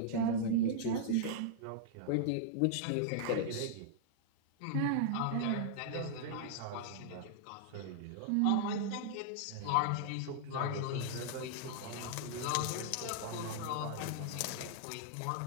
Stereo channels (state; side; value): different; both; correlation -0.01